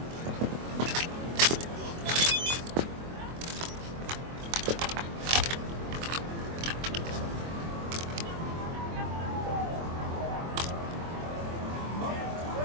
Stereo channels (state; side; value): late; left; 24 ms